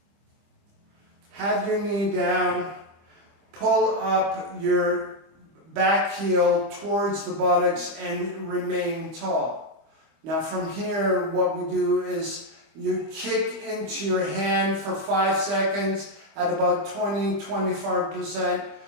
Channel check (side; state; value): left; late; 25 ms